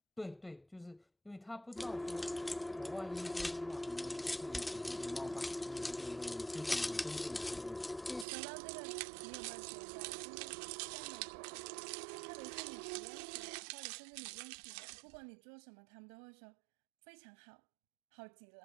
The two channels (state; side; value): drops out; left; at 8.2 s